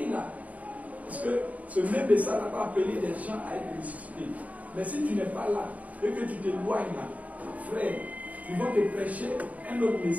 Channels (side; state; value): left; late; 0.071 ms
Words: là. Parce que ce même message n'a pas appelé les gens à être ressuscités. Mais si tu n'es pas là, et que tu t'éloignes là, frère, ils vont te prêcher un autre